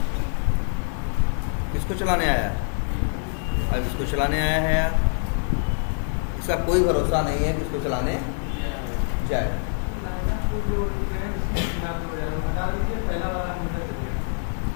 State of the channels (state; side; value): silent; right; 62 dB below the other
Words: किसको चलाने आया, अब इसको चलाने आया है यार, इसका कोई भरोसा नहीं है कि इसको चलाने जाए।